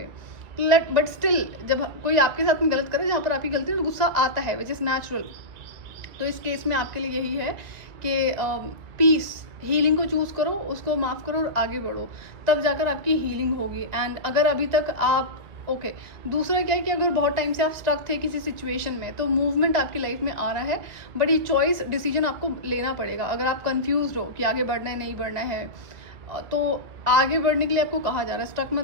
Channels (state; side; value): late; left; 1.9 ms